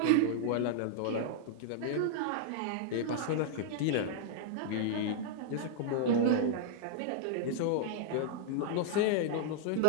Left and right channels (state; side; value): different; both; correlation -0.02